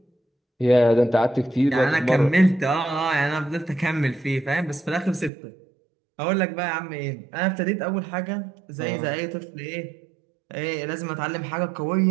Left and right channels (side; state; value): left; drops out; at 5.3 s